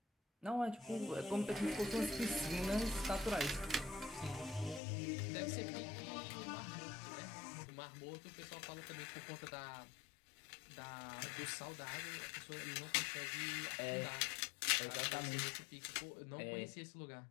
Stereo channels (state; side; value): drops out; right; at 4.8 s